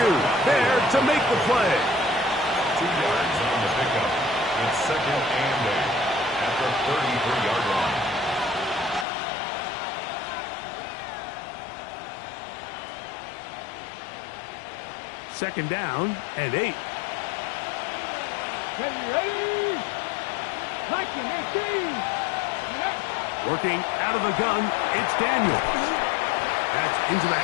there to make the play. 2 yards on the pickup. It's 2nd and 8 at the 33-yard line. Second down and 8. Ready? 19, 18. Working out of the gun, it's Daniel. That's into the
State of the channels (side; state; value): right; drops out; at 9.1 s